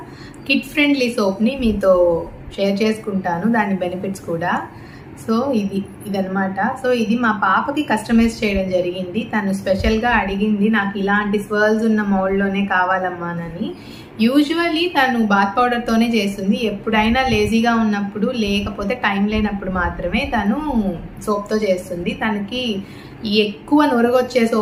కిడ్ ఫ్రెండ్లీ సోప్ని మీతో షేర్ చేసుకుంటాను, దాని బెనిఫిట్స్ కూడా. సో ఇదనమాట. సో ఇది మా పాపకి కస్టమైజ్ చేయడం జరిగింది. తను స్పెషల్గా అడిగింది, నాకు ఇలాంటి స్వర్ల్స్ ఉన్న మౌల్డ్లోనే కావాలమ్మానని. యూజువల్లీ తను బాత్ పౌడర్తోనే చేస్తుంది. ఎప్పుడైనా లేజీగా ఉన్నప్పుడు, లేకపోతే టైం లేనప్పుడు మాత్రమే తను సోప్తో చేస్తుంది. తనకి ఈ ఎక్కువ నొరగొచ్చే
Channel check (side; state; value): both; identical; correlation 1.00